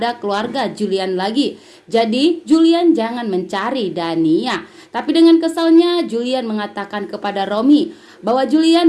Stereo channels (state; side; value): identical; both; correlation 1.00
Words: keluarga Julian lagi. Jadi Julian jangan mencari Dania. Tapi dengan kesalnya Julian mengatakan kepada Romi bahwa Julian